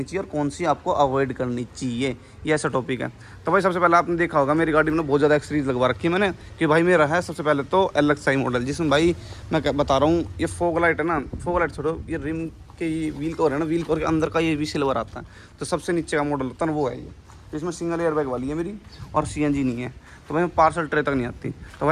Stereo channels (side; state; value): both; identical; correlation 1.00